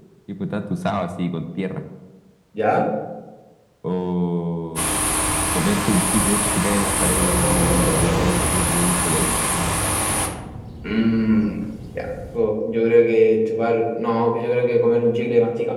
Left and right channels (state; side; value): identical; both; correlation 1.00